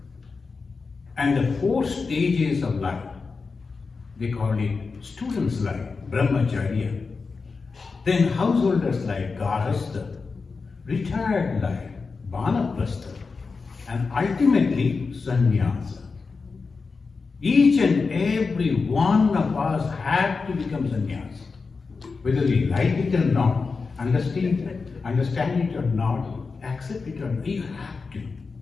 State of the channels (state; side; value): quieter; right; 4.6 dB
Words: And the 4 stages of life, they call it students' life, brahmacharya. Then householders' life, garhastha. Retired life, vanaprastha. And ultimately, sannyasa. Each and every one of us have to become sannyasi. Whether we like it or not, understand it or not, accept it or not, you have to.